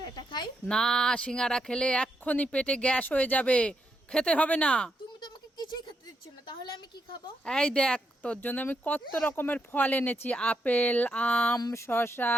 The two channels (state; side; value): normal; both; correlation 0.80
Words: খাই। না, সিঙ্গারা খেলে এক্ষুনি পেটে গ্যাস হয়ে যাবে, খেতে হবে না। তুমি তো আমাকে কিছুই খেতে দিচ্ছ না, তাহলে আমি কি খাবো? এই দেখ, তোর জন্য আমি কত রকমের ফল এনেছি, আপেল, আম, শসা,